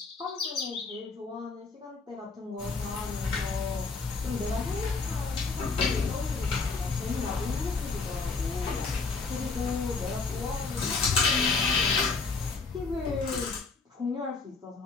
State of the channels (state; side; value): quieter; right; 4.3 dB